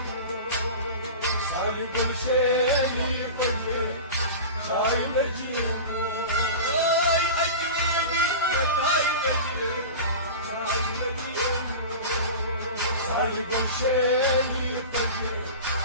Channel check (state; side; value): inverted; both; correlation -0.30